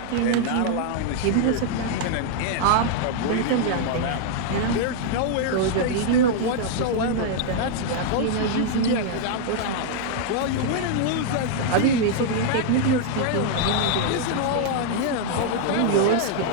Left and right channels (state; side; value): different; both; correlation 0.00